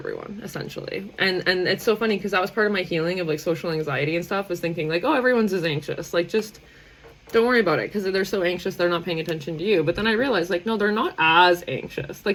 essentially. And it's so funny because that was part of my healing of like social anxiety and stuff, was thinking like, oh, everyone's as anxious, like just don't worry about it, because they're so anxious they're not paying attention to you. But then I realized like, no, they're not as anxious.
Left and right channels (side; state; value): both; identical; correlation 1.00